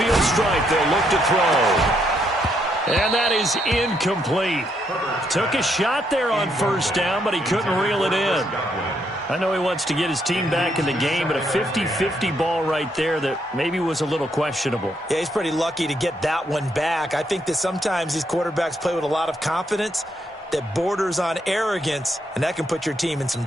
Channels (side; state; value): both; normal; correlation 0.75